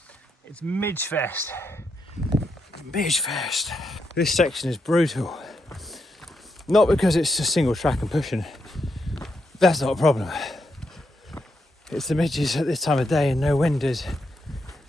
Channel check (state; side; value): normal; both; correlation 0.81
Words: It's Midge Fest. Midge Fest. This section is brutal. Not because it's just single track and pushing. That's not a problem. It's the midges at this time of day and no wind is.